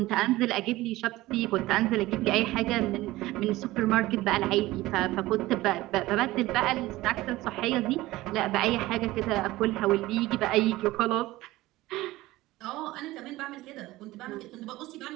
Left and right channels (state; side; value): quieter; left; 18.0 dB